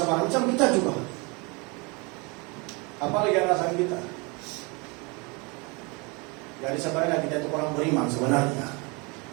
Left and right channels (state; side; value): quieter; left; 28.9 dB